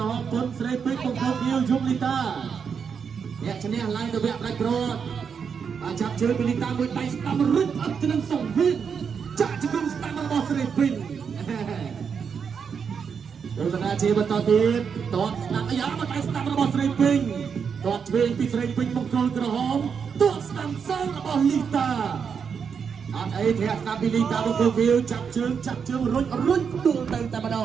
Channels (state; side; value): quieter; left; 6.5 dB